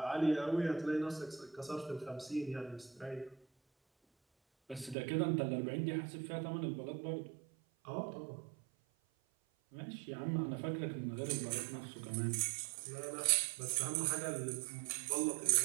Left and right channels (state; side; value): drops out; left; at 5.0 s